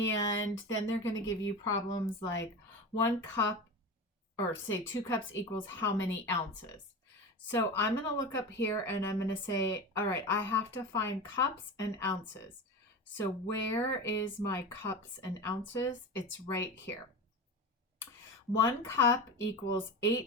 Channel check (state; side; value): normal; both; correlation 0.27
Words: then they're going to give you problems like 1 cup, or say 2 cups equals how many ounces. So I'm going to look up here and I'm going to say, all right, I have to find cups and ounces. So where is my cups and ounces? It's right here. 1 cup equals